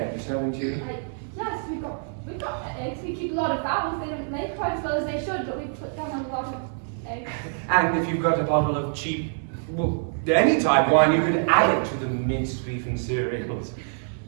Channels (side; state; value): left; silent; digital silence